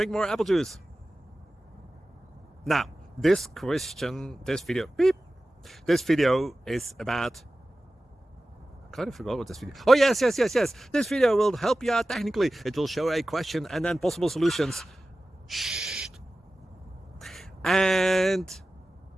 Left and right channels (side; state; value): both; normal; correlation 0.95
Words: more apple juice. Now, this video is about... I kind of forgot what this video... Oh, yes. This video will help you out technically. It will show a question and then possible solutions. Shh. And